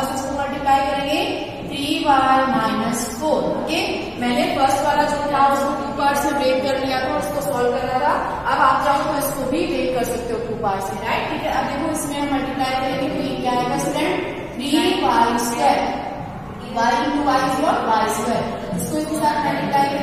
इसको मल्टीप्लाई करेंगे 3y माइनस 4। ओके, मैंने फर्स्ट वाला जो था उसको 2 पार्ट्स में ब्रेक कर लिया था, उसको सॉल्व करना था। अब आप चाहो तो इसको भी ब्रेक कर सकते हो 2 पार्ट्स में, राइट, ठीक है। अब देखो इसमें हम मल्टीप्लाई करेंगे तो ये क्या आएगा student? 3y square, y into y is what? y square. इसको इसके साथ मल्टीप्लाई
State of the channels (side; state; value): both; identical; correlation 1.00